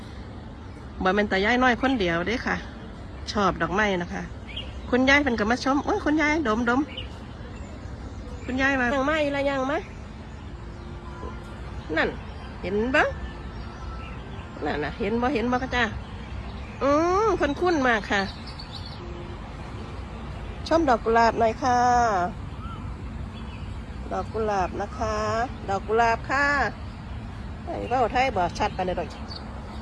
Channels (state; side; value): identical; both; correlation 1.00